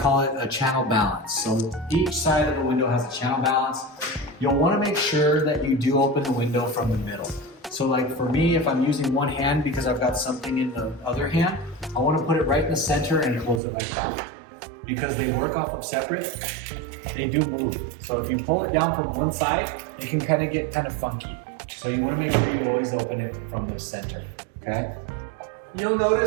it a channel balance. So each side of the window has a channel balance. You'll want to make sure that you do open the window from the middle. So like for me, if I'm using one hand because I've got something in the other hand, I want to put it right in the center and close it like that. Because they work off of separate, they do move. So if you pull it down from one side, it can get kind of funky. So you want to make sure you always open it from the center, okay? You'll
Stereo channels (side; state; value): left; drops out; at 13.6 s